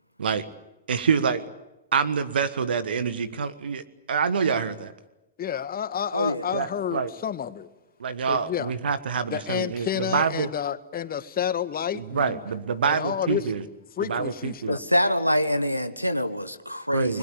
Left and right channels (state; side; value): inverted; both; correlation -0.56